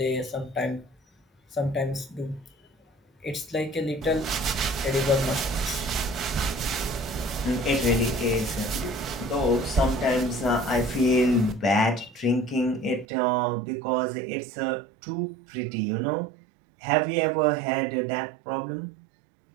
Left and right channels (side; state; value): left; drops out; at 13.1 s